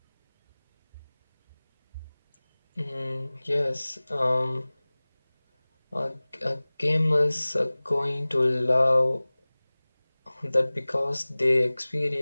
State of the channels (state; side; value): inverted; both; correlation -1.00